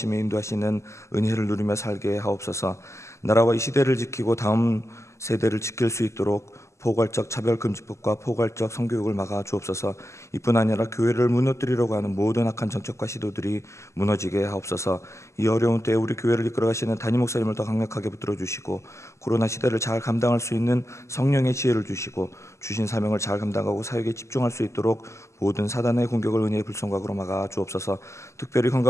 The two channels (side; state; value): right; late; 0.13 ms